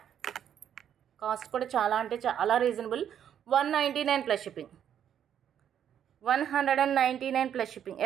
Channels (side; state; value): left; quieter; 9.4 dB